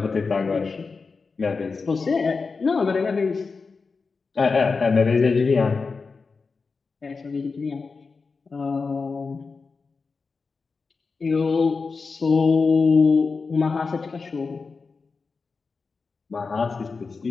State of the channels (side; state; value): right; quieter; 4.6 dB